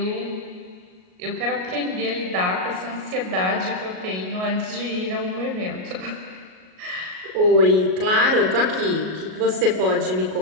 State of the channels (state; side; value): late; left; 38 ms